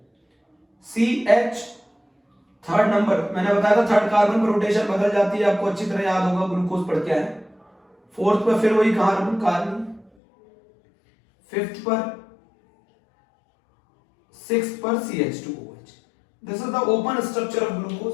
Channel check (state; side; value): drops out; right; at 10.1 s